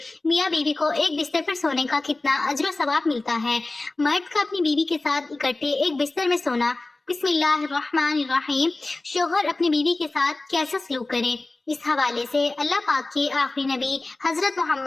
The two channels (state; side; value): quieter; right; 3.1 dB